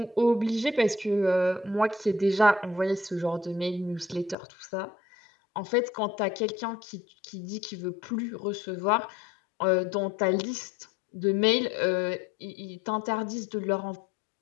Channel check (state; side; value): drops out; right; at 4.4 s